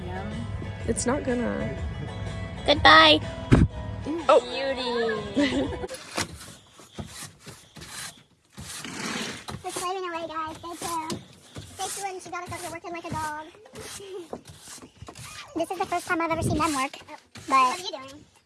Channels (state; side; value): identical; both; correlation 1.00